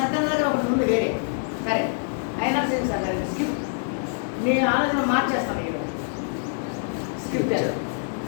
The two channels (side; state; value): right; silent; digital silence